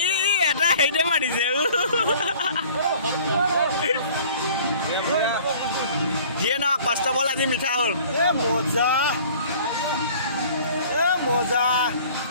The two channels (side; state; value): both; inverted; correlation -0.49